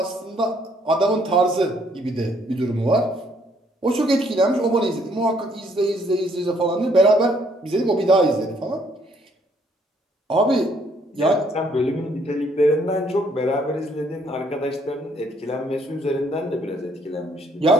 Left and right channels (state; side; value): normal; both; correlation 0.67